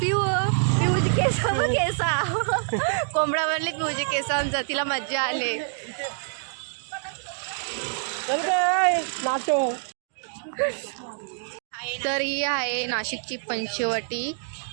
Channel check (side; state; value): left; silent; digital silence